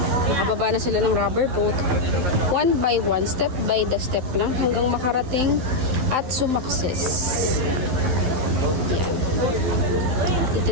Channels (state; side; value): late; left; 12 ms